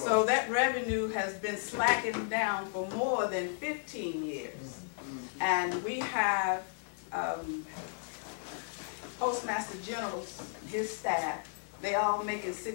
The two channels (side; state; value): right; silent; digital silence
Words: that revenue has been slacking down for more than 15 years. And we have Postmaster General, his staff, they all making